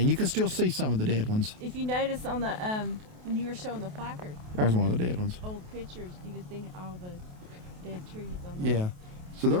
You can still see some of the dead ones. If you notice on the when you were showing the placard, There's one of the dead ones. old pictures, you could see all the dead trees on the Yeah. So there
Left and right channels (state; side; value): late; left; 28 ms